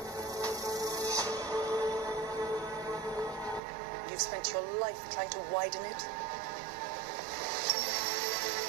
You've spent your life trying to widen it.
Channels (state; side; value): drops out; left; at 3.6 s